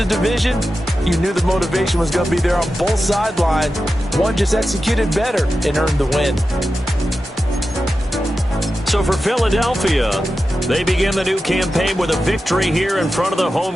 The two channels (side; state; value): both; normal; correlation 0.92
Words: division. You knew the motivation was going to be there on both sidelines. One just executed better and earned the win. So for Philadelphia, they begin the new campaign with a victory here in front of the